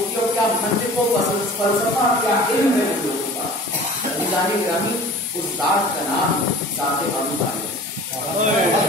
की, और क्या मंतिक़ व फ़लसफ़ा, क्या इल्म है उन लोगों का। जाने ग्रामी उस ज़ात का नाम ज़ात अबू तालिब।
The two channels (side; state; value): both; normal; correlation 0.42